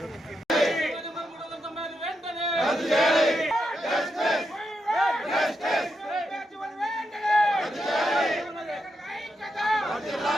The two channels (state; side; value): normal; both; correlation 0.84